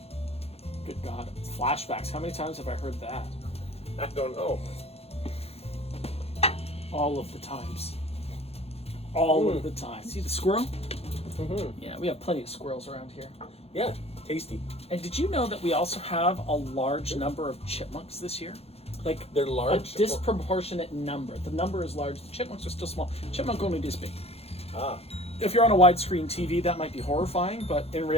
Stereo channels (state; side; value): late; right; 0.29 ms